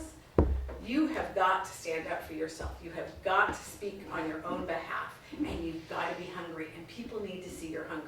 you have got to stand up for yourself. You have got to speak on your own behalf, and you've got to be hungry, and people need to see your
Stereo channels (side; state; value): both; identical; correlation 1.00